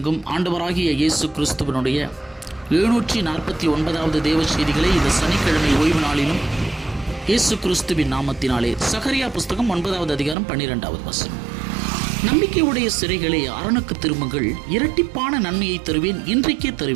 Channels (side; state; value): left; drops out; at 10.4 s